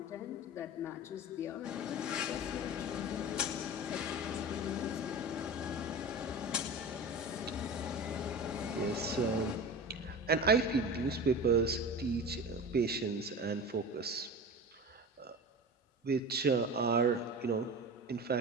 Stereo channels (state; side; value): normal; both; correlation 0.31